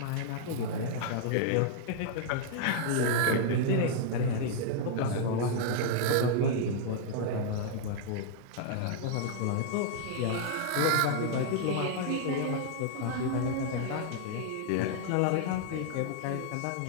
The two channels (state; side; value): different; both; correlation -0.01